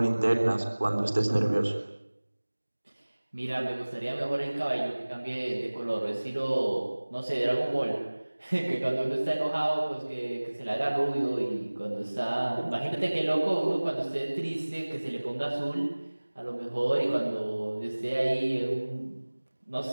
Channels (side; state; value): both; inverted; correlation -1.00